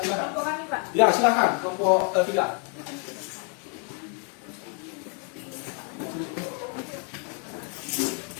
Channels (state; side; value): quieter; right; 39.7 dB